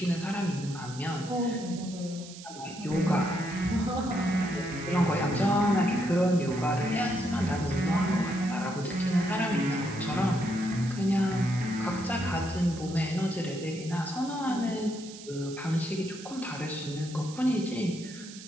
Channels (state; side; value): noise; right; hiss, 15 dB below the sound